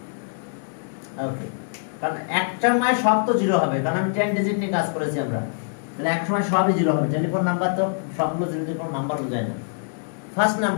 ওকে, কারণ একটা সময় সব তো জিরো হবে, কারণ আমি 10 ডিজিট নিয়ে কাজ করেছি আমরা, তাহলে এক সময় সবই জিরো হবে। টেলিফোন নাম্বার তো সবগুলো জিরো দিয়ে কোনো নাম্বার বোঝায় না। ফার্স্ট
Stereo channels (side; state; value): right; silent; digital silence